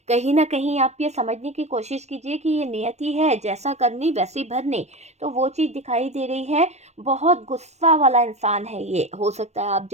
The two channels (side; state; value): left; late; 0.32 ms